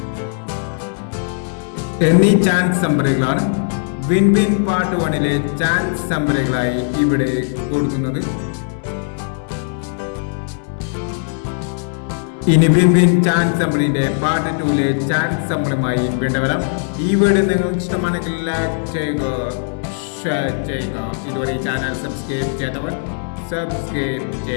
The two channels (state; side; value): silent; right; digital silence